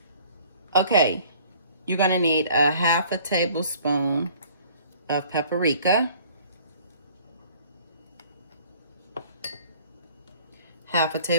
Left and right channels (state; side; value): inverted; both; correlation -0.54